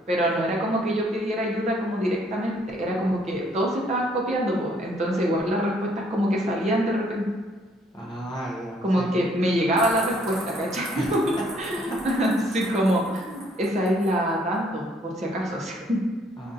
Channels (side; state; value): both; normal; correlation 0.65